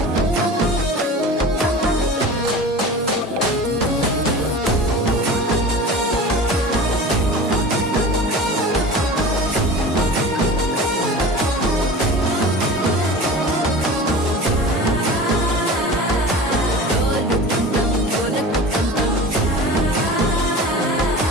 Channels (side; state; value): both; normal; correlation 0.36